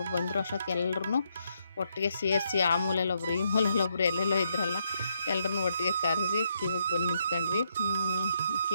ಬಂದರು ಅಷ್ಟೊತ್ತಿಗೆ ಎಲ್ಲರೂ ಒಟ್ಟಿಗೆ ಸೇರಿಸಿ ಆ ಮೂಲೆಯಲ್ಲೊಬ್ರು ಈ ಮೂಲೆಯಲ್ಲೊಬ್ರು ಎಲ್ಲೆಲ್ಲೋ ಇದ್ರಲ್ಲ ಎಲ್ಲರನ್ನೂ ಒಟ್ಟಿಗೆ ಕರೆಸಿ ಕ್ಯೂವಿಗೆ ಬಂದು ನಿಂತ್ಕೊಂಡ್ವಿ.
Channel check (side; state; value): both; inverted; correlation -0.76